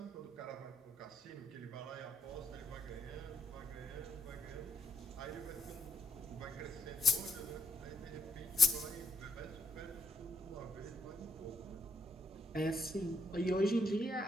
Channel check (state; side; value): normal; both; correlation 0.72